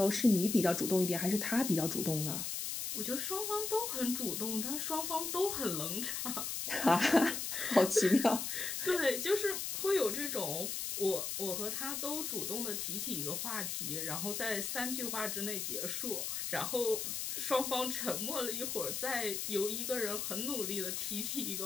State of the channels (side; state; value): left; noise; hiss, 3 dB below the sound